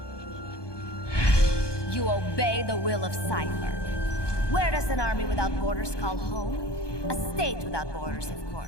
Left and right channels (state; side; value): late; right; 1.2 ms